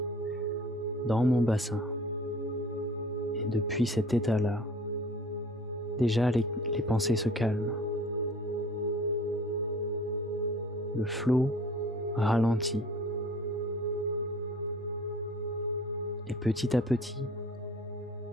dans mon bassin et depuis cet état-là, déjà les pensées se calment. Le flot ralentit et petit à petit,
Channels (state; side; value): normal; both; correlation 0.48